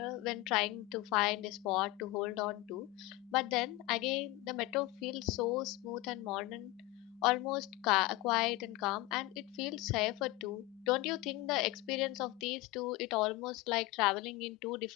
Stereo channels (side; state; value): right; quieter; 19.3 dB